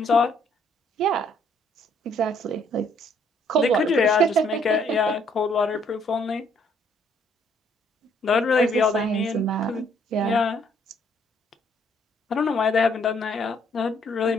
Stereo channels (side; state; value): both; normal; correlation 0.66